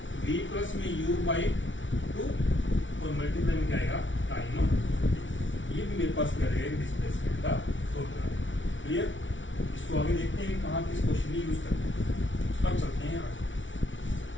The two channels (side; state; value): right; late; 0.56 ms